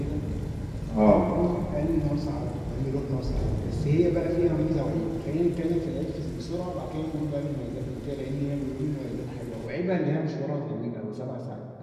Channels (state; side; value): identical; both; correlation 1.00